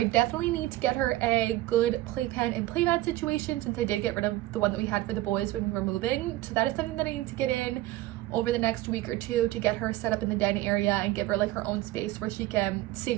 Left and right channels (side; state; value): left; quieter; 16.6 dB